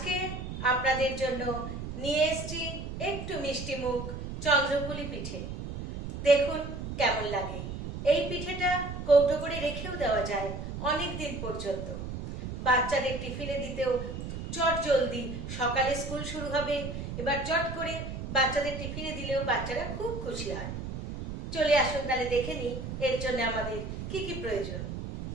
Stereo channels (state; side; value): noise; right; rumble, 7 dB below the sound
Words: আপনাদের জন্য নিয়ে এসেছি একটু মিষ্টি মুখ চন্দ্রপুলি পিঠে। দেখুন কেমন লাগে। এই পিঠেটা কৌটো করে রেখেও দেওয়া যায় অনেক দিন পর্যন্ত। বাচ্চাদের টিফিনে দিতেও চট জলদি, সকালে স্কুল শুরু হবে, এবার চট করে বাচ্চাদের টিফিনে দিলেও বাচ্চারা খুব খুশি হয়। চলে আসুন তাহলে দেখে নিই এর জন্য আমাদের কি কি প্রয়োজন।